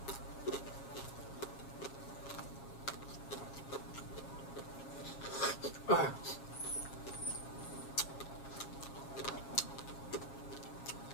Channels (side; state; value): right; late; 7.3 ms